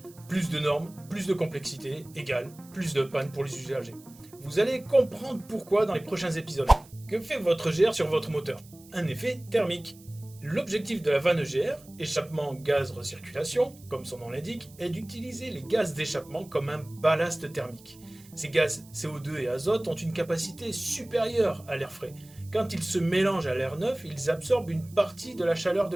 plus de normes, plus de complexité, égale plus de panne pour les usagers. Vous allez comprendre pourquoi dans les prochains épisodes. Que fait votre EGR sur votre moteur? Un effet thermique. L'objectif de la vanne EGR, échappement gaz recirculation, comme son nom l'indique, est d'utiliser les gaz d'échappement comme un ballast thermique. Ces gaz CO2 et azote ont une capacité supérieure à l'air frais. Quand ils se mélangent à l'air neuf, ils absorbent une partie de la chaleur de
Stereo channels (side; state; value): right; noise; hiss, 24 dB below the sound